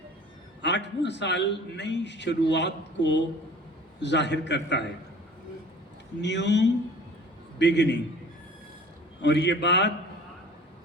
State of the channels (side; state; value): both; normal; correlation 0.46